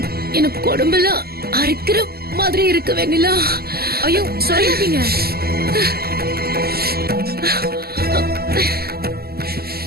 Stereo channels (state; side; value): late; left; 0.45 ms